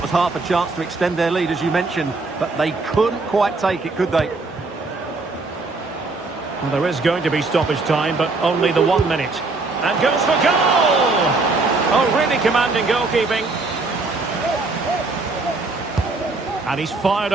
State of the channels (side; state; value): left; quieter; 3.6 dB